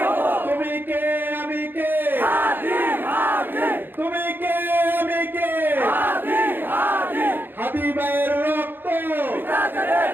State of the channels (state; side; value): late; left; 0.097 ms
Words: হব, তুমি কে আমি কে, হাদি হাদি তুমি কে আমি কে, হাদি হাদি হাদি ভাইয়ের রক্ত, পিতা যেতে